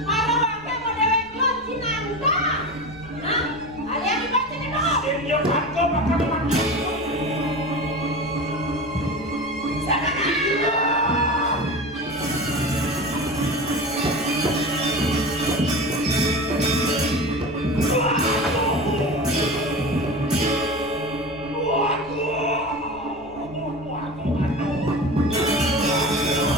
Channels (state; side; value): noise; left; rumble, 22 dB below the sound